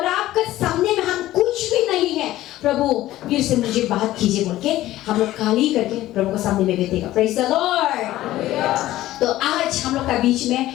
आपके सामने में हम कुछ भी नहीं है। प्रभु फिर से मुझे बात कीजिए बोल के हम लोग खाली करके प्रभु के सामने में बैठेगा। Praise the Lord. तो आज हम लोग का बीच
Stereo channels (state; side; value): quieter; right; 15.2 dB